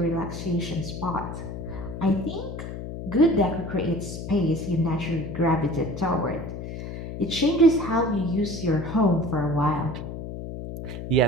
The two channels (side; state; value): left; noise; hum, 8 dB below the sound